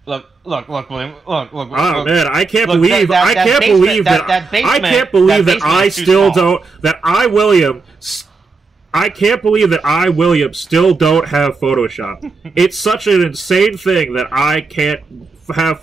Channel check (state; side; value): quieter; left; 4.2 dB